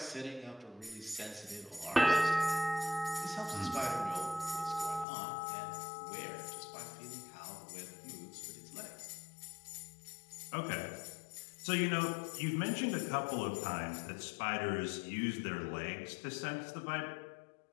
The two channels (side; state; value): right; drops out; at 5.1 s